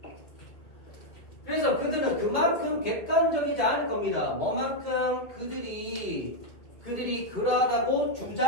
그래서 그들은 그만큼 객관적이지 않을 겁니다. 뭐만큼 그들이 그러하다고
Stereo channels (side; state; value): right; late; 2.0 ms